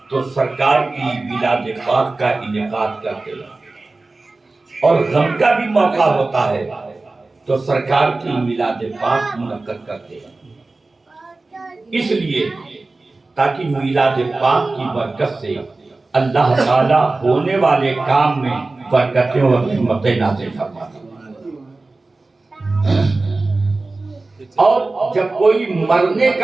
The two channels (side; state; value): left; quieter; 3.3 dB